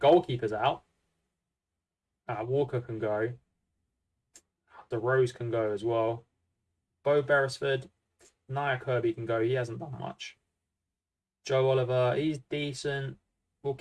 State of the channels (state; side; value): identical; both; correlation 1.00